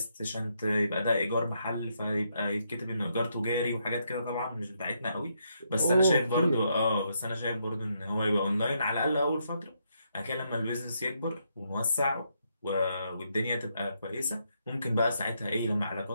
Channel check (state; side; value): inverted; both; correlation -0.77